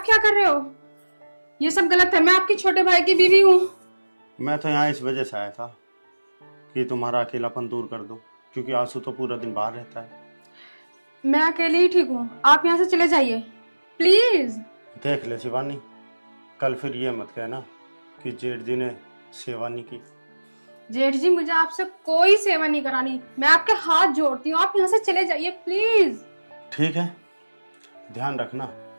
क्या कर रहे हो? ये सब गलत है, मैं आपके छोटे भाई की बीवी हूँ। मैं तो यहाँ इस वजह से आया था कि तुम्हारा अकेलापन दूर कर दो, क्योंकि आंसू तो पूरा दिन बाहर रहता है। मैं अकेले ही ठीक हूँ, आप यहाँ से चले जाइए प्लीज। देख ले शिवानी, कल फिर ये मत कहना कि जेठ जी ने शिवानी की जेठ जी मुझे आपसे कोई सेवा नहीं करानी, मैं आपके हाथ जोड़ती हूँ, आप यहाँ से चले जाइए प्लीज। ठीक है, ध्यान रखना,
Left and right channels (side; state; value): both; inverted; correlation -1.00